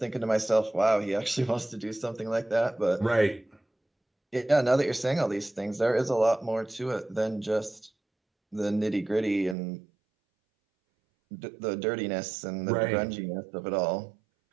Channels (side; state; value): left; drops out; at 9.6 s